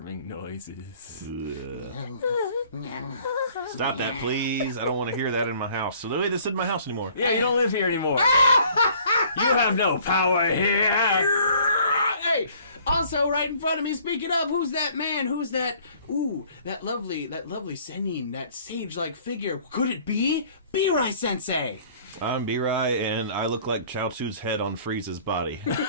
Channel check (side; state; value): both; inverted; correlation -0.55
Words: noises. Stop that, please. I don't want to hear that in my house. So, Louis, this isn't my house anymore. Yeah, you don't live here anymore. You have no power here. Hey, also right in front of me, speaking of, who's that man? Who's that? Ooh, that lovely Senin, that sage-like figure. Could it be Birai Sensei? I'm Birai, and I look like Chaozu's head on Frieza's body.